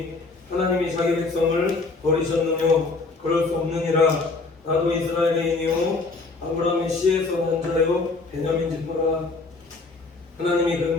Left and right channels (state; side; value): quieter; right; 3.7 dB